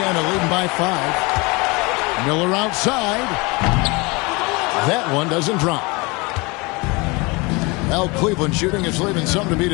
leading by 5. Miller outside. That one doesn't drop. Well, Cleveland shooting is leaving something to be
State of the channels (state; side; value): quieter; right; 26.3 dB